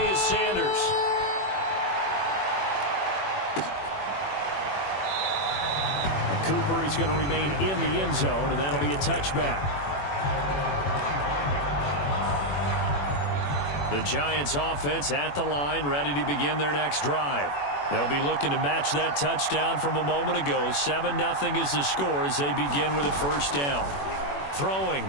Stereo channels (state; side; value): late; right; 21 ms